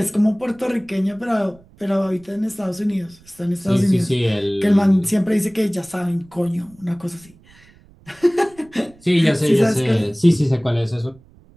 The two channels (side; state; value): right; noise; rumble, 27 dB below the sound